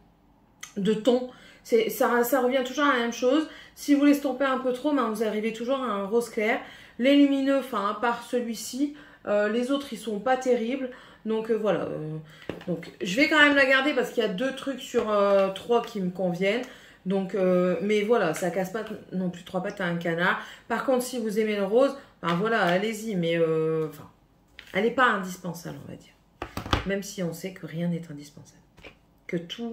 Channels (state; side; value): identical; both; correlation 1.00